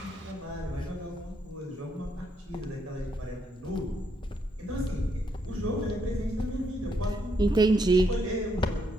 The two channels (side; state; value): both; normal; correlation 0.76